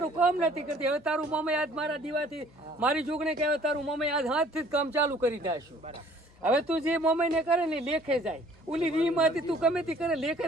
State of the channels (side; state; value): left; noise; hum, 30 dB below the sound